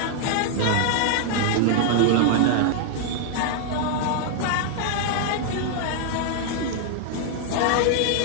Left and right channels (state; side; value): different; both; correlation 0.00